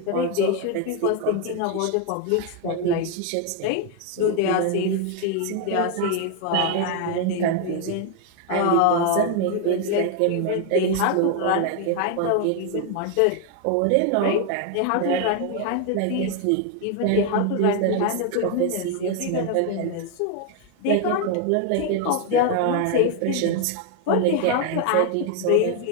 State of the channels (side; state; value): both; different; correlation 0.01